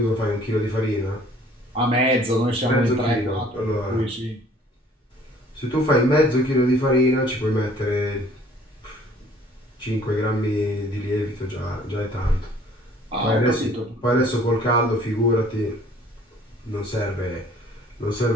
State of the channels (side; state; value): both; normal; correlation 0.55